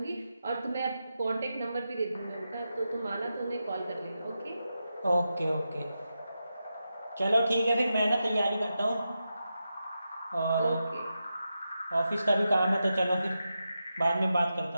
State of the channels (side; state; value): both; inverted; correlation -0.89